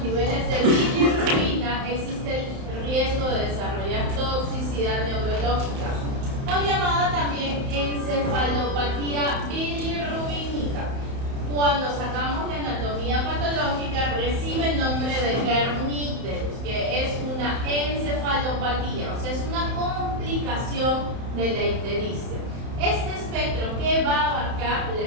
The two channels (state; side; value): late; left; 31 ms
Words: niveles de bilirrubina, existe el riesgo de desarrollar toxicidad neurológica, o llamada también encefalopatía bilirrubínica. Cuando sacamos la anatomía patológica, recibe el nombre de Kernicterus, que es una encefalopatía, o sea, es una complicación de la ictericia. Este espectro que va a abarcar la